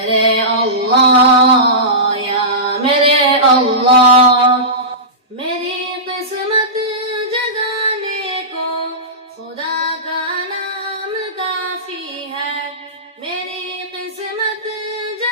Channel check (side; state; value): both; normal; correlation -0.20